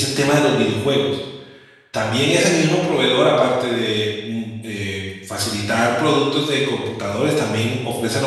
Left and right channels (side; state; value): both; identical; correlation 1.00